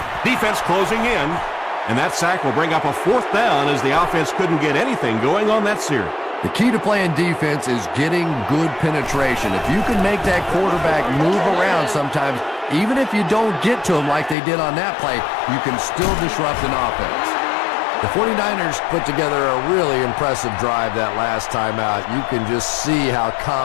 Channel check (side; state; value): right; drops out; at 14.4 s